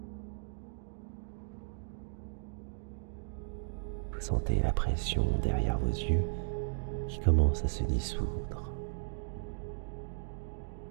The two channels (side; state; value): left; silent; 54 dB below the other